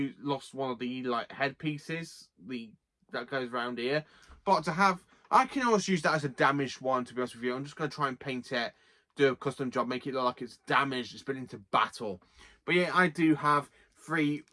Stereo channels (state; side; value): identical; both; correlation 1.00